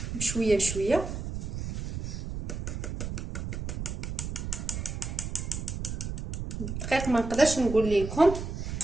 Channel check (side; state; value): right; noise; rumble, 5 dB below the sound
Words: بشويه بشويه. الدقيق ما نقدرش نقول لكم،